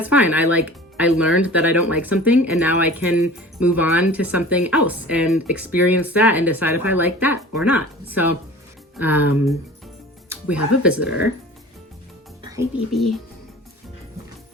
fine. I learned that I don't like something, and now I can move on to something else and experience that and decide if I like that or not. So we have a visitor. Hi, baby.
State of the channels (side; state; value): both; normal; correlation 0.41